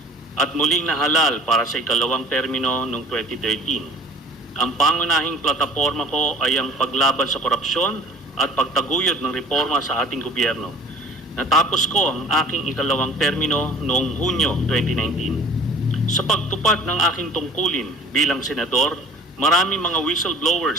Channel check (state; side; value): normal; both; correlation 0.47